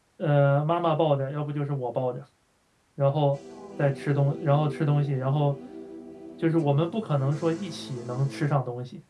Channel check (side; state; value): both; identical; correlation 1.00